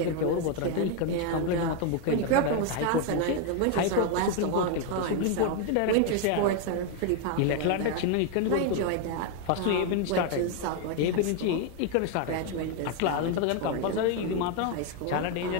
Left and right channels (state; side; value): different; both; correlation 0.01